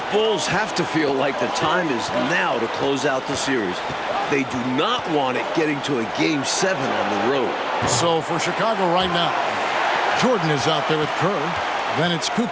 Bulls have to feel like the time is now to close out the series. They do not want it getting to a Game 7 on the road. So for Chicago right now, Jordan is out there with Kerr. Then it's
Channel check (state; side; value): identical; both; correlation 1.00